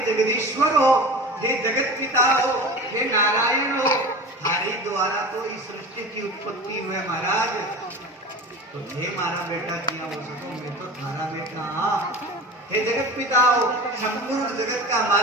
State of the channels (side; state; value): both; normal; correlation 0.34